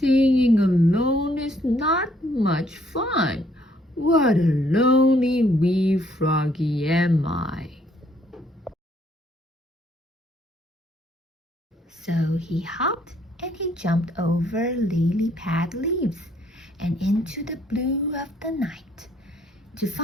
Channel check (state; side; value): normal; both; correlation 0.67